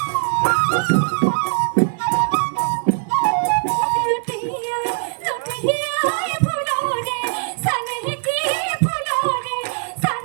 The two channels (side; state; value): left; silent; digital silence